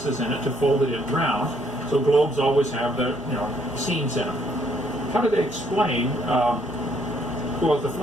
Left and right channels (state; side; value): normal; both; correlation 0.68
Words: in it to fold it in round. So globes always have the seams in them. How do they explain? Well, the